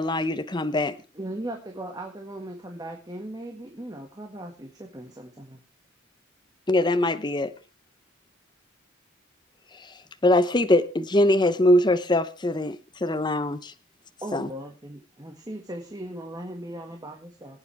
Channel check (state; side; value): normal; both; correlation 0.65